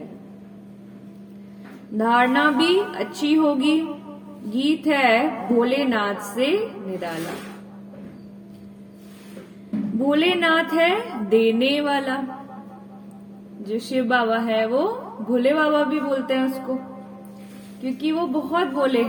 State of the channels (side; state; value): both; identical; correlation 1.00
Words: धारणा भी अच्छी होगी। गीत है भोलेनाथ से निराला। भोलेनाथ है देने वाला। जो शिव बाबा है वो भोले बाबा भी बोलते हैं उसको, क्योंकि वो बहुत भोले